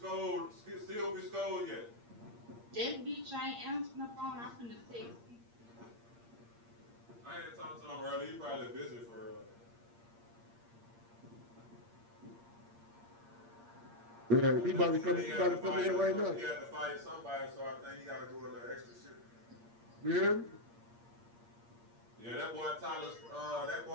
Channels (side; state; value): left; late; 8.6 ms